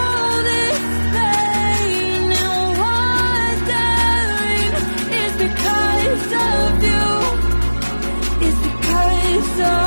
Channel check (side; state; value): both; inverted; correlation -1.00